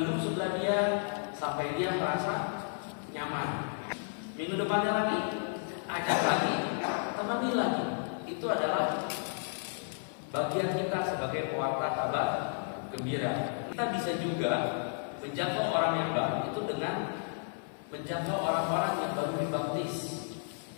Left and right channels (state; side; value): silent; right; digital silence